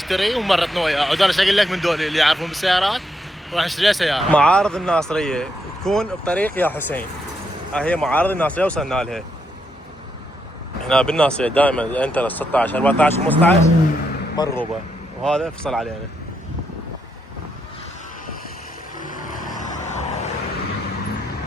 ومرتنا وياه، وانا ايش اقول لك من دول اللي يعرفون بالسيارات راح نشتري سياره. معارض الناصريه تكون بطريق يا حسين. هي معارض الناصريه وصلنا لها. هنا بالناصريه دائما انتر 16 14 15 مرغوبه، وهذا فصل علينا.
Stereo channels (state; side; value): normal; both; correlation 0.79